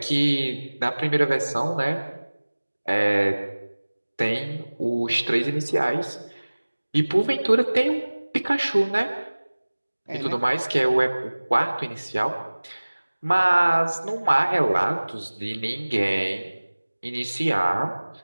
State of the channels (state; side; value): inverted; both; correlation -1.00